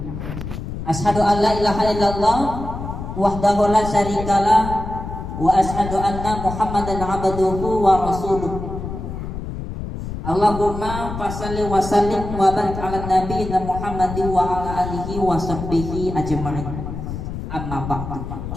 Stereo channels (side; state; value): left; noise; rumble, 7 dB below the sound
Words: Asyhadu an la ilaha illallah wahdahu la syarikalah wa asyhadu anna Muhammadan abduhu wa rasuluh. Allahumma fasalli wa sallim wa barik ala nabiyina Muhammadin wa ala alihi wa sahbihi ajma'in. Amma ba'du.